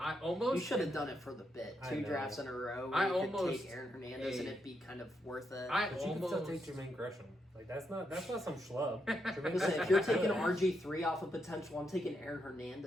You should have done it for the bit. I 2 know. drafts in a row. I Where you could almost- take Aaron Hernandez Hey. and it'd be kind of worth it. I But you can still almost take Jermaine Gresham. Like that's not some schlub. Jermaine Listen, if you're Gresham's taking good. RG3 off of potential, I'm taking Aaron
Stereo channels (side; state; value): both; normal; correlation 0.81